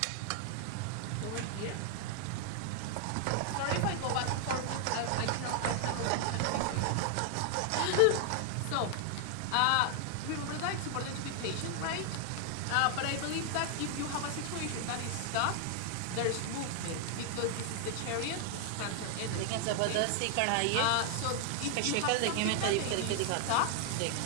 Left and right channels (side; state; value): both; different; correlation 0.00